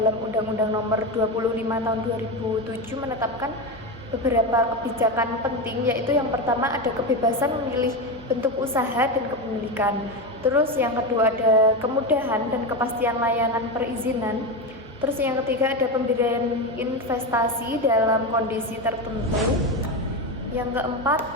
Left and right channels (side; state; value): both; normal; correlation 0.16